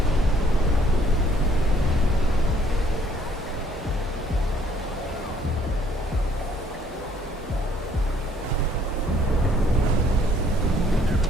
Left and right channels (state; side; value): normal; both; correlation 0.63